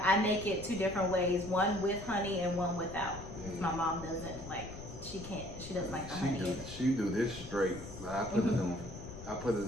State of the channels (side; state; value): left; noise; rumble, 12 dB below the sound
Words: I make it 2 different ways, one with honey and one without. Yeah. My mom doesn't like, she doesn't like the honey. She do this straight, but I put it on. I put